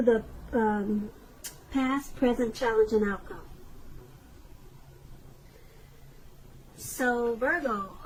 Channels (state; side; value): identical; both; correlation 1.00